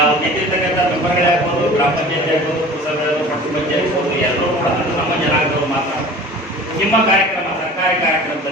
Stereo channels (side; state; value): both; normal; correlation 0.41